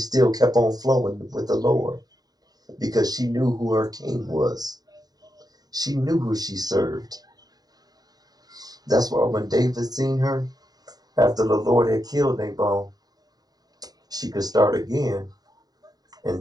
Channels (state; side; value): late; left; 0.19 ms